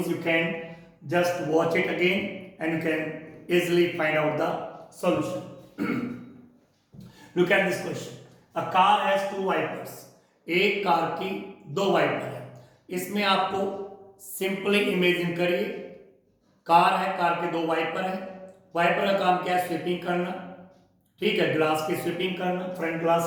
you can just watch it again and you can easily find out the solution. Look at this question. A car has two wipers. एक car की दो wiper है. इसमें आपको simply imagine करिए, car है, car के दो वाइपर है. वाइपर का काम क्या है? स्वीपिंग करना. ठीक है, ग्लास की स्वीपिंग करना, फ्रंट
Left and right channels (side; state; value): both; identical; correlation 1.00